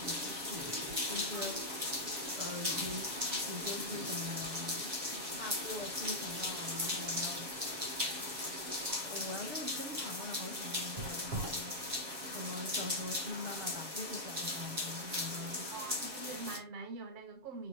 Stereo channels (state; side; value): late; left; 7.3 ms